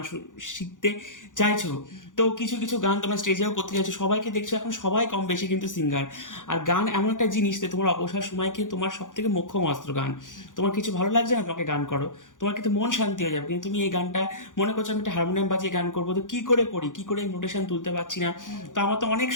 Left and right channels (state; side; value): late; right; 0.87 ms